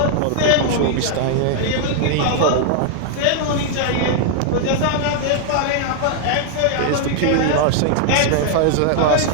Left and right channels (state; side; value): different; both; correlation 0.00